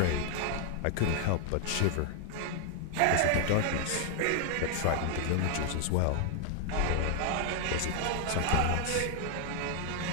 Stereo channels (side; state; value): both; different; correlation 0.00